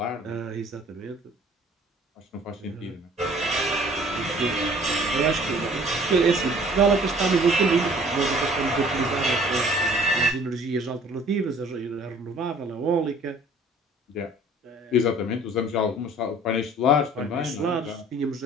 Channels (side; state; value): both; normal; correlation 0.52